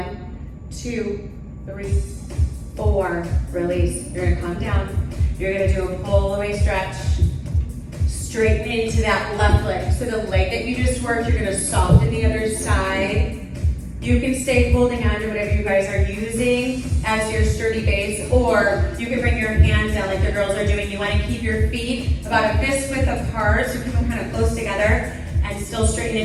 2, 3, 4, release. You're gonna come down, you're gonna do a pull away stretch, straighten into that left leg. So the leg that you just worked, you're gonna soften the other side. You can stay holding on to whatever you guys are using as your sturdy base, or you can bring your hands down like the girls are doing. You wanna keep your feet about a fist width apart, so keep them kind of close together, and still straighten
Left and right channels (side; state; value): both; identical; correlation 1.00